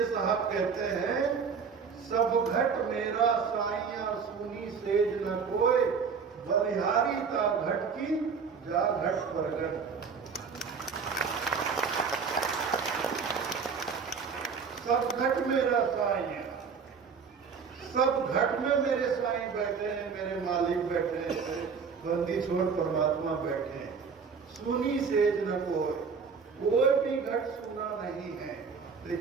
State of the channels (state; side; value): quieter; left; 5.8 dB